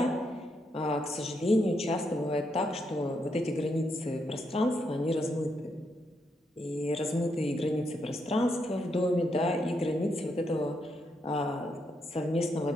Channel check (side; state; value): both; normal; correlation 0.80